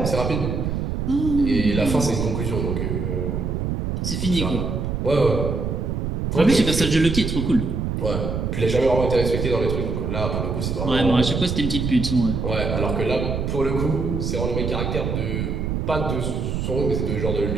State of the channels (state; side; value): noise; right; rumble, 2 dB below the sound